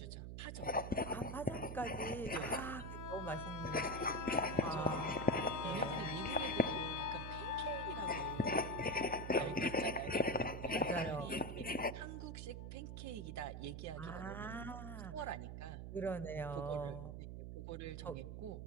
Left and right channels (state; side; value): noise; right; hum, 7 dB below the sound